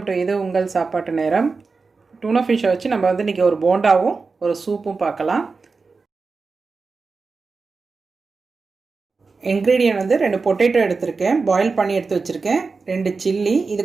to இது உங்கள் சாப்பாட்டு நேரம். டூனா ஃபிஷ்ஷை வச்சு நம்ம இன்றைக்கி ஒரு போண்டாவும் ஒரு சூப்பும் பார்க்கலாம். இன்க்ரீடியன்ட் 2 பொட்டேட்டோ எடுத்திருக்கேன், பாயில் பண்ணி எடுத்து வச்சுருக்கேன். 2 சில்லி, இது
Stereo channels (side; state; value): left; quieter; 4.4 dB